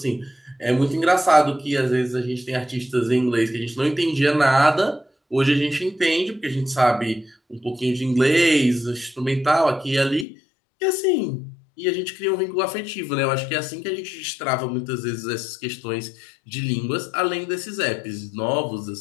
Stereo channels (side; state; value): right; drops out; at 10.2 s